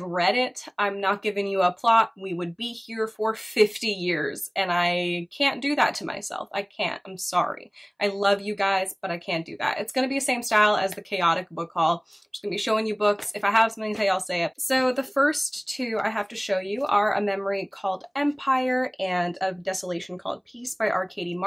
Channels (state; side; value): identical; both; correlation 1.00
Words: read it, I'm not giving you a plot. We would be here for 50 years, and I can't do that to myself. I can't. I'm sorry. I love you guys, but I can't do that. It's going to be the same style as the chaotic book haul. I'm just going to be showing you books. If I have something to say, I'll say it. So the first 2 I have to show you are A Memory Called Empire and A Desolation Called Peace by R. Katie